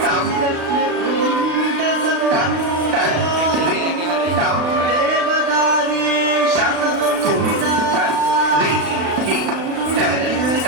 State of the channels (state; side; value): late; left; 35 ms